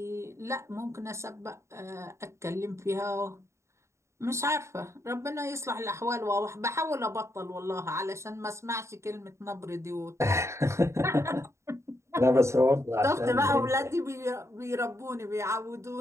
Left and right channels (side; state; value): left; late; 0.14 ms